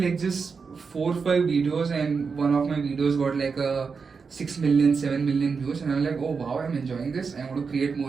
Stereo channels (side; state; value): left; quieter; 5.3 dB